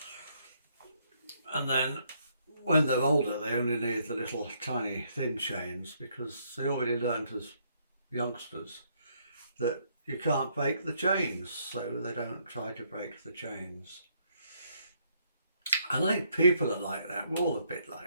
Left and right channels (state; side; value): inverted; both; correlation -0.71